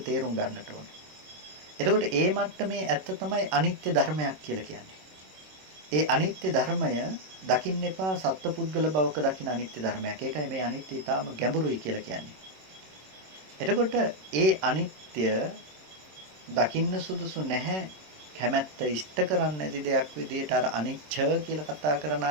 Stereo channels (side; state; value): left; late; 26 ms